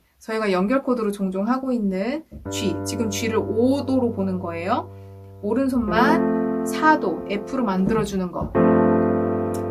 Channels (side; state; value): both; identical; correlation 1.00